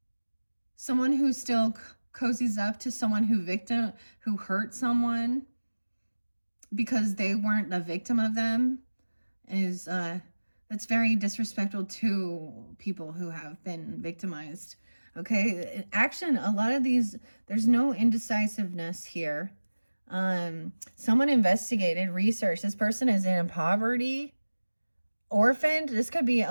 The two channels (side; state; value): both; inverted; correlation -1.00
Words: someone who still cozies up to someone who hurt someone because they weren't the victim of them, is that's very disrespectful to people who have been victimized. Okay, action, a lot of these, there's no indecisiveness here. Someone investigated, researched. This person is in poverty, orphaned. This could be